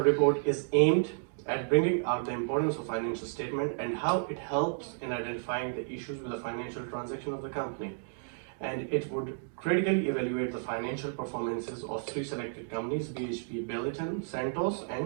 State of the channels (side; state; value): left; silent; digital silence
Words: is aimed at bringing out the importance of financial statement and how it helps in identifying the issues with the financial transaction of the company. And it would critically evaluate the financial performances of three selected companies, BHP Billiton, Santos